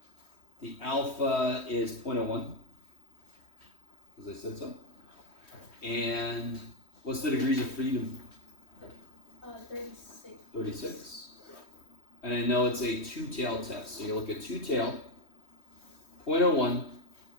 the alpha is 0.01, because I said so. And what's the degrees of freedom? 36. 36. And I know it's a two-tail test. So you look at two-tail, 0.01,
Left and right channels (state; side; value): late; right; 3.2 ms